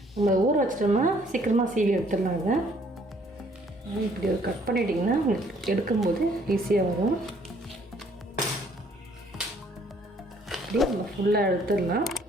நம்ம ஊற வச்சிட்டோம்னா சீக்கிரமாக சீவி எடுத்துடலாங்க. இப்படி ஒரு கட் பண்ணிட்டிங்கன்னா உங்களுக்கு எடுக்கும்போது ஈஸியாக வரும். இப்படி நம்ம ஃபுல்லாக எடுத்துடலாம்.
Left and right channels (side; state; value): both; normal; correlation 0.62